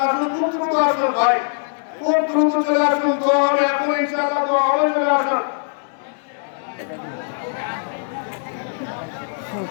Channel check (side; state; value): right; silent; digital silence